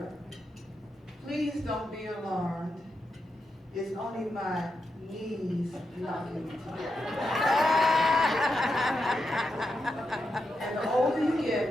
please don't be alarmed. It's only my knees knocking together. And the older you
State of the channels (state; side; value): normal; both; correlation 0.86